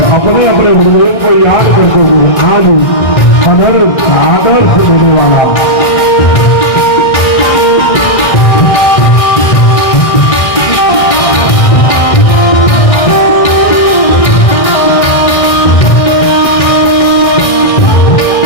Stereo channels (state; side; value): late; right; 1.6 ms